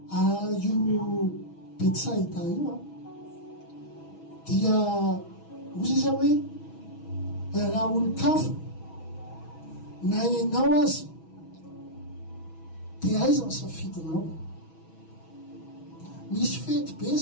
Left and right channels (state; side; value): late; right; 6.2 ms